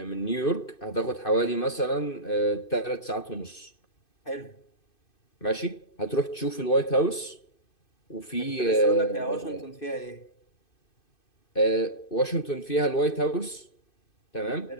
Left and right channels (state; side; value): late; right; 2.6 ms